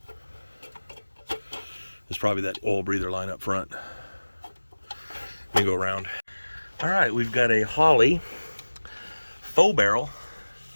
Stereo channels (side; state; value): both; inverted; correlation -1.00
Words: There's probably that oil breather line up front. Let me go around. All right, we've got a Holly faux barrel.